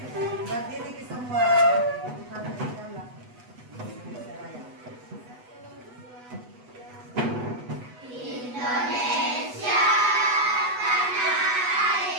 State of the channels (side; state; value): left; late; 8.1 ms